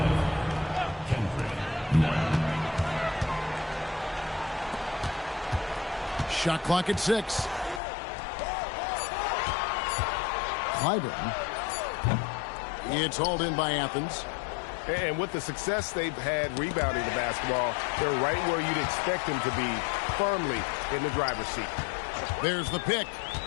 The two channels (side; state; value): right; drops out; at 7.8 s